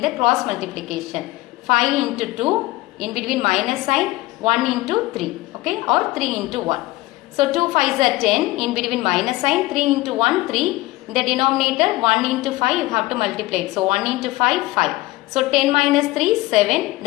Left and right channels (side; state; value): right; quieter; 19.2 dB